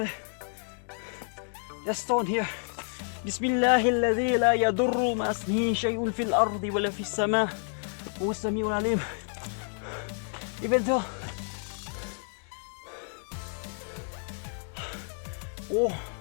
Just stone here. بسم الله الذي لا يضر مع اسمه شيء في الأرض ولا في السماء هو السميع العليم. Even though oh,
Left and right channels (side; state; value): right; silent; 55 dB below the other